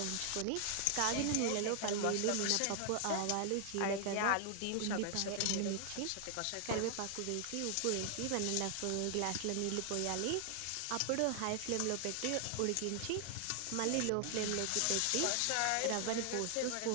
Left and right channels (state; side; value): different; both; correlation 0.00